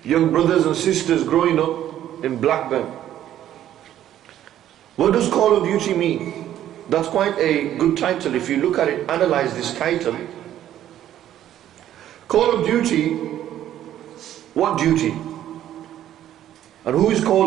young brothers and sisters growing up in Blackburn. What does Call of Duty mean? That's quite a good title if you look at it, analyze this title. Call of Duty, what duty? And who is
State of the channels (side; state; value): left; quieter; 11.8 dB